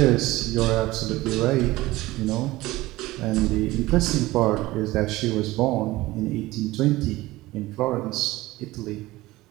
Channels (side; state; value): left; quieter; 18.5 dB